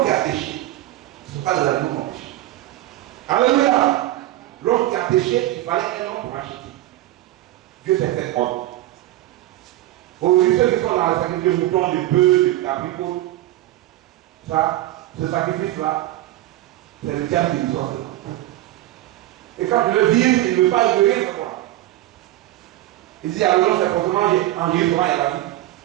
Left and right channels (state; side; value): quieter; left; 15.4 dB